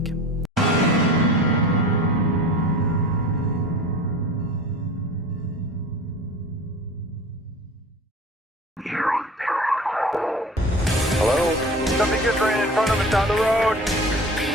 Hello? Something just ran in front of us down the road.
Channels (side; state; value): both; normal; correlation 0.39